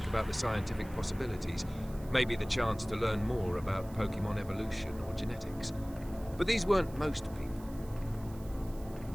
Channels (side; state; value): right; noise; hiss, 22 dB below the sound